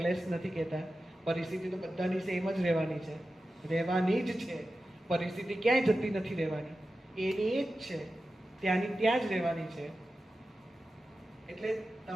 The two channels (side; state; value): both; normal; correlation 0.93